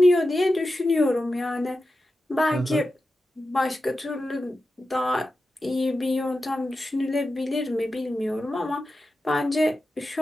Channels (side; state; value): both; normal; correlation 0.92